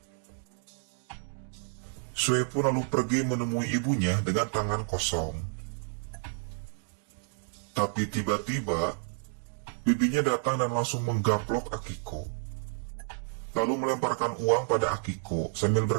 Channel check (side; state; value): left; silent; 58 dB below the other